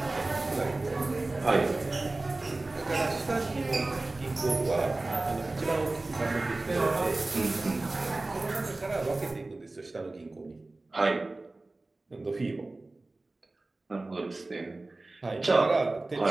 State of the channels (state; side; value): quieter; left; 3.1 dB